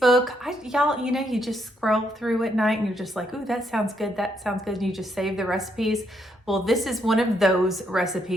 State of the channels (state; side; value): normal; both; correlation 0.75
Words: Y'all, you just scroll through at night and you're just like, ooh, that sounds good. That sounds good. And you just save the recipes. Well, this is one of those